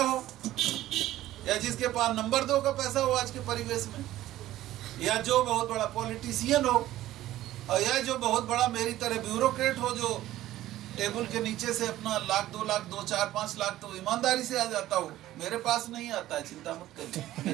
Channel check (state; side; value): quieter; left; 14.6 dB